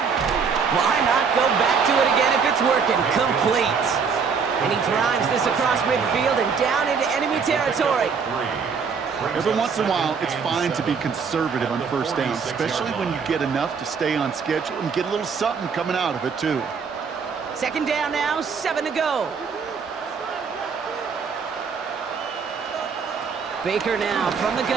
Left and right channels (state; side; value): quieter; left; 5.8 dB